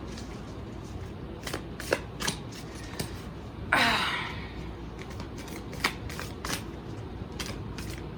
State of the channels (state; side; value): identical; both; correlation 1.00